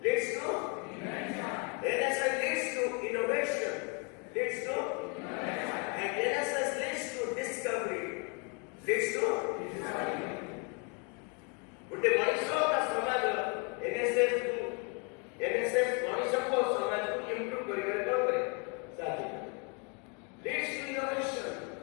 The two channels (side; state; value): right; quieter; 34.9 dB